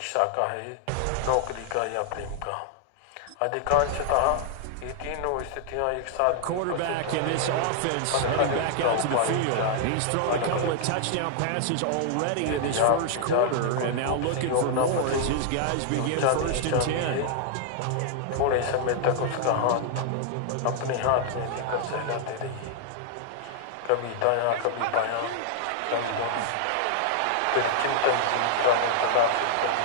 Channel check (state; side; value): different; both; correlation 0.00